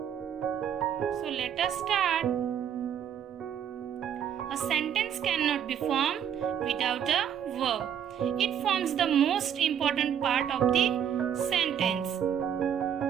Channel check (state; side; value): quieter; left; 9.0 dB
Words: So let us start. A sentence cannot be formed without a verb. It forms the most important part of the sentence.